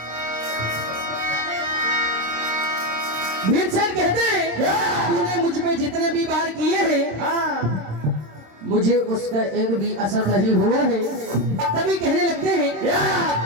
भीमसेन कहते हैं तूने मुझ पे जितने भी वार किए हैं मुझे उसका एक भी असर नहीं हुआ है। तभी कहने लगते हैं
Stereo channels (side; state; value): left; late; 26 ms